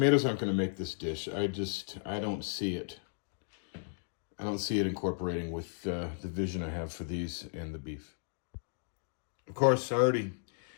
aren't going to make this dish. I don't see it. I don't see it incorporating with the vision I have for these and the beef. Of course, I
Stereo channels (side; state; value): right; silent; digital silence